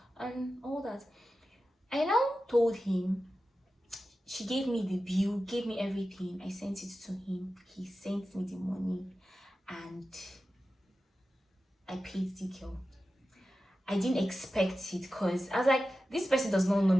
and all that. I now told him. She gave me the bill, gave me everything. I sent it to him. He sent me the money and I paid the girl. I didn't expect it because I was like, this person does not know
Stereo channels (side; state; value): both; normal; correlation 0.93